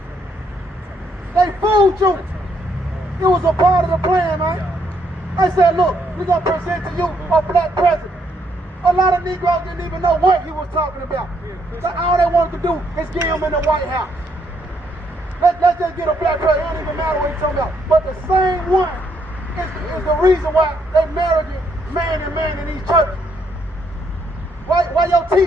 They fooled you. It was a part of the plan, man. They said, look, we're going to present to you a black president. A lot of Negroes didn't even know what he was talking about. So all they wanted to do is get him in the White House. Let's just get a black president. It don't even matter what he's talking about. But the same one is the reason why they married man and man in these churches. Why your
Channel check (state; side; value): normal; both; correlation 0.73